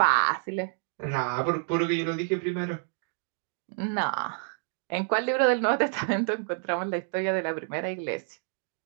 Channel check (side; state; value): left; silent; 59 dB below the other